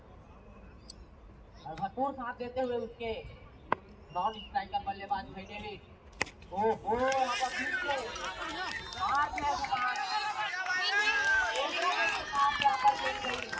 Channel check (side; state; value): both; identical; correlation 1.00